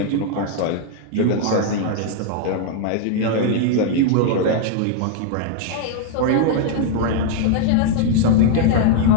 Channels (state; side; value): different; both; correlation 0.00